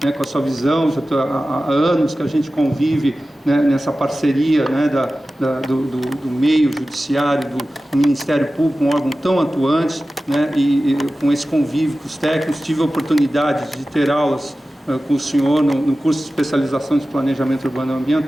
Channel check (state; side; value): normal; both; correlation 0.95